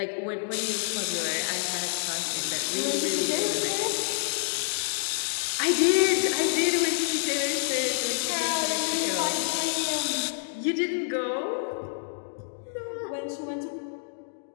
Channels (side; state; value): right; silent; digital silence